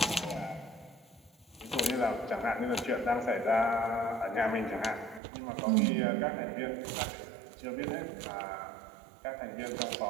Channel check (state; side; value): drops out; left; at 5.2 s